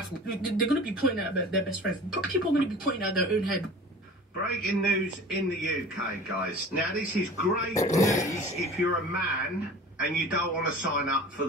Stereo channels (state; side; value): normal; both; correlation 0.41